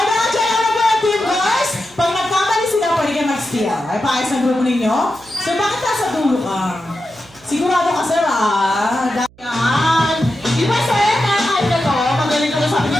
na-check na ba yung team boys? Pag nagkamali sila, pwede kayo mag-steal. Ay, paayos ang grupo ninyo? So, bakit nasa dulo ka? Sigurado ka, sir, ah. Yan. Di ba, sir, kahit na to, magaling ka na sabi ni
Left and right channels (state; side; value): noise; right; hum, 27 dB below the sound